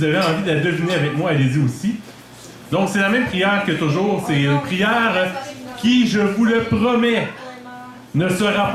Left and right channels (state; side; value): identical; both; correlation 1.00